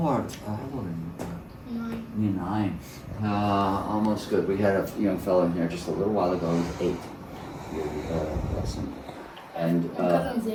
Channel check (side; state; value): both; identical; correlation 1.00